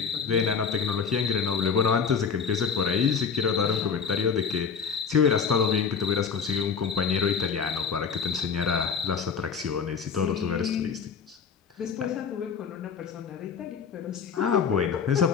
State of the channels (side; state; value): right; quieter; 6.3 dB